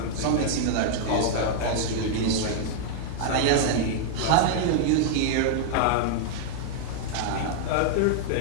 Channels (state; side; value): different; both; correlation -0.01